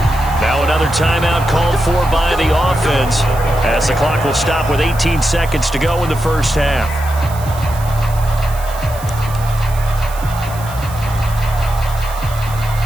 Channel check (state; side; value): noise; right; hiss, 17 dB below the sound